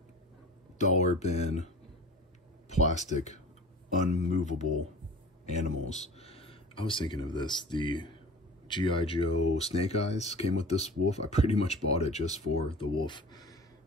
dollar bin, plastic, unmovable animals. I was thinking of this. The G.I. Joe Snake Eyes came with this wolf. I pretty much bought it just for the wolf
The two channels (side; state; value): both; normal; correlation 0.39